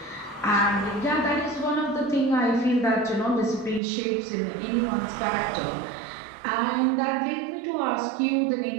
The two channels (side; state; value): left; drops out; at 3.8 s